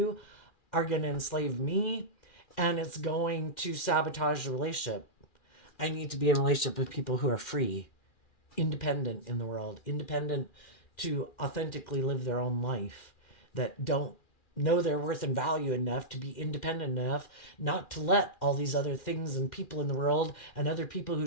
are going to enslave me, and it's going to sabotage the relationship. I need to be in a relationship with people who are free, independent in the world, independent to authentically live their own life, that don't know their worth and value enough to be independent enough not to let all these other things and people in the world and other people who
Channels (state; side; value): late; right; 2.4 ms